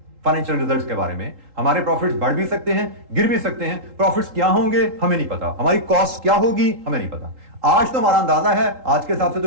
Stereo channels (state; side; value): late; left; 3.8 ms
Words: फाइनेंशियल रिजल्ट्स के बारे में। हमारे प्रॉफिट्स बढ़ भी सकते हैं, गिर भी सकते हैं। प्रॉफिट्स क्या होंगे हमें नहीं पता, हमारी कॉस्ट क्या होगी हमें नहीं पता। आज तो हमारा अंदाजा है, आज के हिसाब से तो